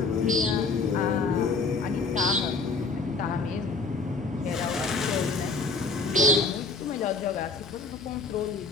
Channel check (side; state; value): right; quieter; 4.0 dB